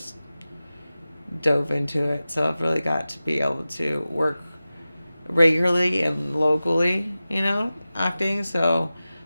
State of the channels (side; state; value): both; inverted; correlation -0.95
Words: dove into it. So I've really got to be able to work regularly and locally, acting. So,